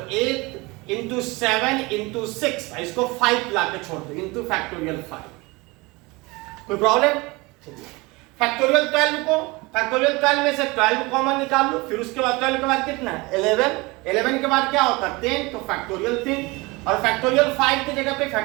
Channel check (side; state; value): left; quieter; 24.2 dB